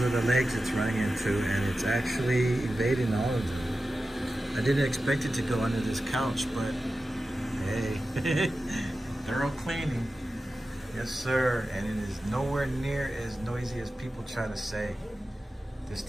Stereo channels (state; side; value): normal; both; correlation 0.93